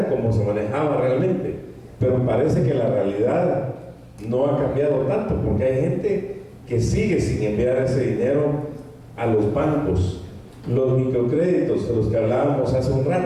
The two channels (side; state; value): both; identical; correlation 1.00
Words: como se manejaba realmente. Pero parece que la realidad no ha cambiado tanto, porque hay gente que sigue sin enviar ese dinero a los bancos. Los microcréditos de los que hablábamos hace un